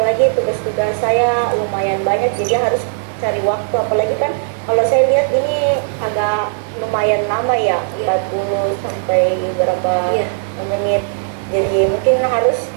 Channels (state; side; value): silent; left; digital silence